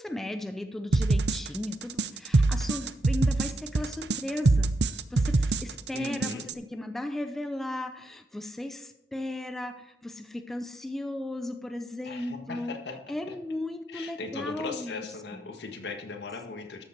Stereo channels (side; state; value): both; normal; correlation 0.84